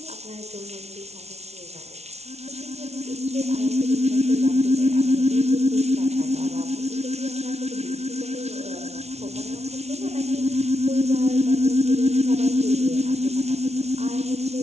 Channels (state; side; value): late; left; 0.31 ms